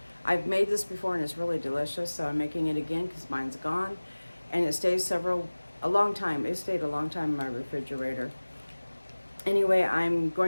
I've made this before and it's really delicious, so I'm making it again because mine's gone, and it stays a long time. It stayed a long time in my refrigerator. Anyway, I'm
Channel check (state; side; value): inverted; both; correlation -1.00